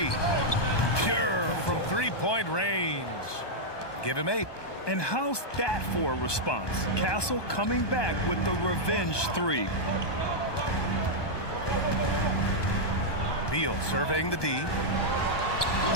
Pure from 3-point range. Give him 8. And how's that for a response? Castle coming back with the revenge 3. Beal surveying the D.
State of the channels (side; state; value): right; late; 1.2 ms